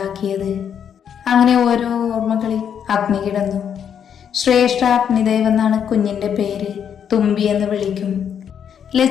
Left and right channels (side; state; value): right; quieter; 8.3 dB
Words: അങ്ങനെ ഓരോ ഓർമ്മകളിൽ അഗ്നി കിടന്നു. ശ്രേഷ്ഠ അഗ്നിദേവ് എന്നാണ് കുഞ്ഞിൻ്റെ പേര്. തുമ്പി എന്ന് വിളിക്കും.